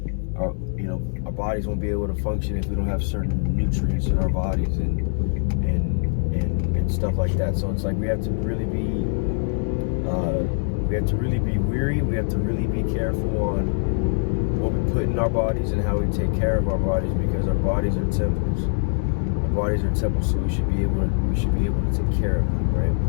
our bodies won't be able to function if we don't have certain nutrients in our bodies and stuff like that. So it's like we have to really be weary. We have to really be careful on what we put in our bodies and how we take care of our bodies, because our bodies are temples. Our bodies are temples, so we should be able to take care of them, right?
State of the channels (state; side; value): silent; right; 63 dB below the other